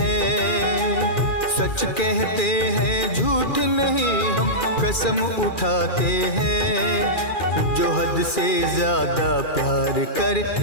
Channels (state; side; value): late; right; 2.4 ms